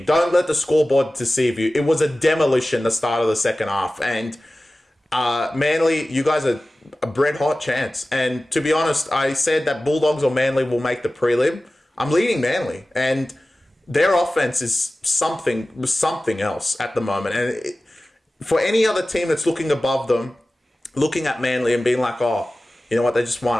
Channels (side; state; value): both; normal; correlation 0.96